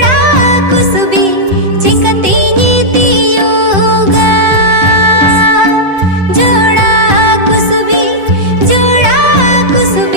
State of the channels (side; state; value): left; late; 7.8 ms